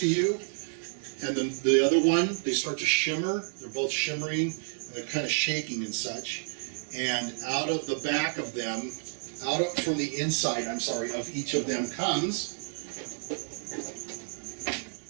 you and then the other one, they start to shimmer. They're both shimmering and they're kind of shaking and such. And out of the back of them, from the inside, of each of them comes,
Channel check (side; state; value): left; silent; digital silence